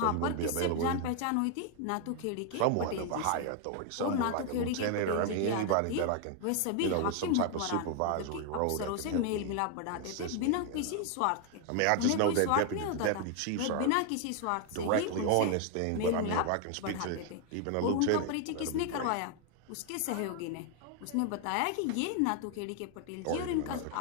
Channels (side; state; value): both; different; correlation 0.00